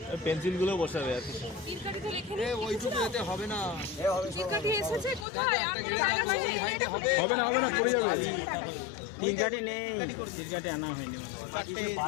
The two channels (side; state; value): right; drops out; at 5.2 s